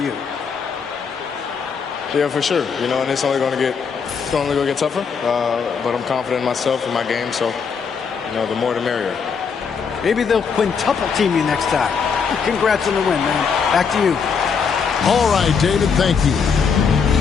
you. Yeah, for sure. And it's only going to get tougher. But I'm confident in myself and my game, so the more the merrier. Maybe they'll quintuple team you next time. Congrats on the win, man. Back to you. All right, David, thank you.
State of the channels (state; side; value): quieter; right; 6.0 dB